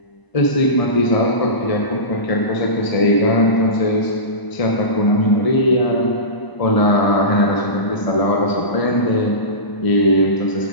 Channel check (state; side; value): late; right; 1.0 ms